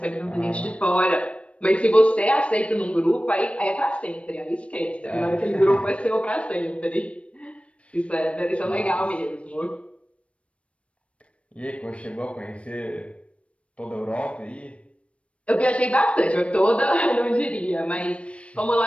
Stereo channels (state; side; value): late; right; 0.062 ms